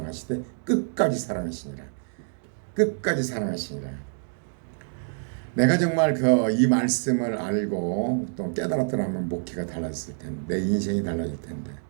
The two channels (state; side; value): silent; left; digital silence